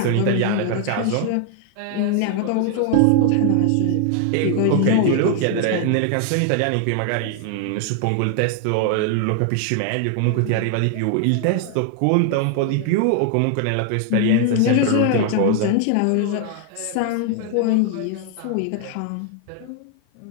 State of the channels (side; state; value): both; different; correlation 0.00